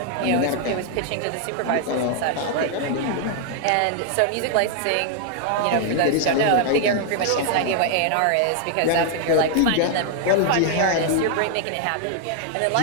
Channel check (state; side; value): different; both; correlation 0.00